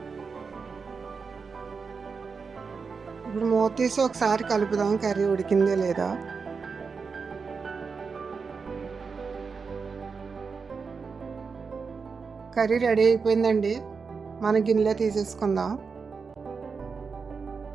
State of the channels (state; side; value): quieter; left; 5.2 dB